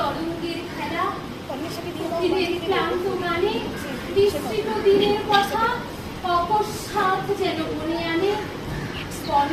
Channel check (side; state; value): both; identical; correlation 1.00